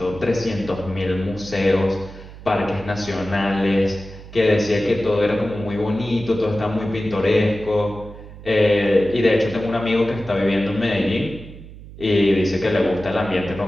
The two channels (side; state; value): right; noise; hum, 16 dB below the sound